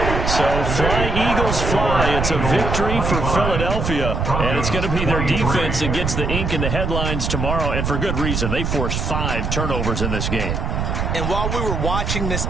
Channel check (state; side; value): noise; right; rumble, 1 dB below the sound